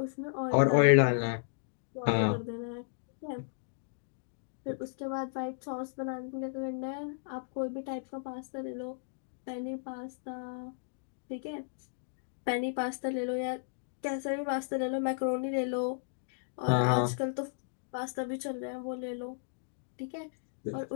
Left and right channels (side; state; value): right; silent; digital silence